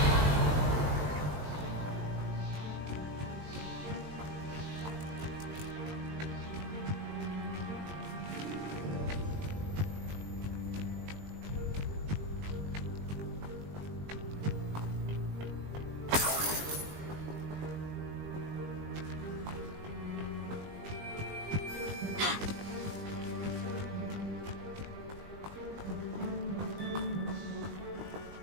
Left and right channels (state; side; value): late; left; 20 ms